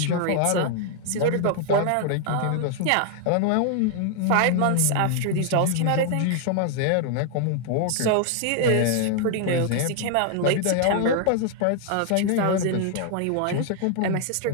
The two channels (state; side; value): different; both; correlation 0.00